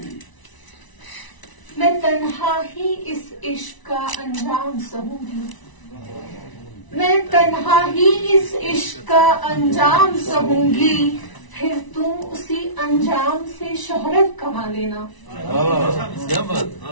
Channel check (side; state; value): right; late; 1.0 ms